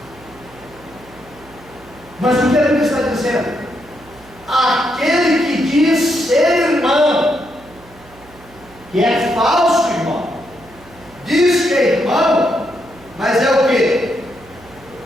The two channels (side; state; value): right; noise; hum, 24 dB below the sound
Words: Mas o que a Bíblia está dizendo? Aquele que diz ser irmão, que é falso irmão, diz que é irmão, mas é o que?